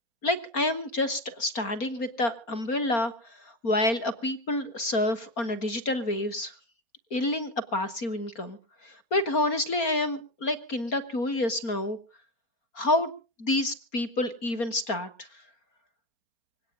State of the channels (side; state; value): right; late; 4.3 ms